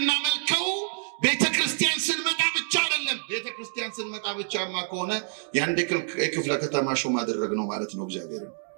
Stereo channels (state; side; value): silent; left; digital silence